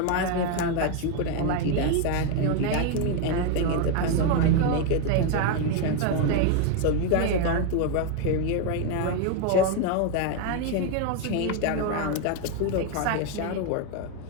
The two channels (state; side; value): different; both; correlation 0.01